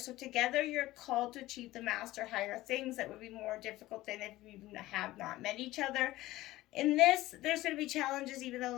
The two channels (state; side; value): quieter; right; 17.1 dB